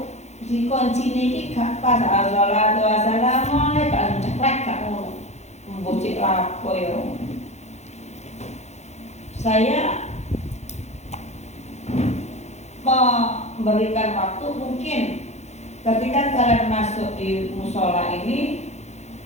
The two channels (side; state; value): right; late; 0.32 ms